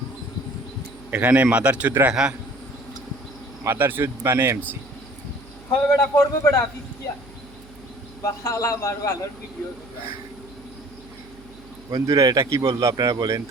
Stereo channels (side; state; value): right; noise; hum, 22 dB below the sound